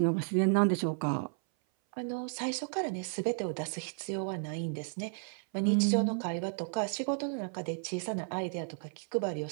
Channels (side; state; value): left; silent; 56 dB below the other